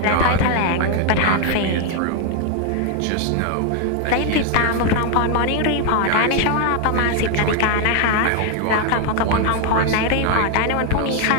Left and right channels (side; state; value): both; different; correlation 0.01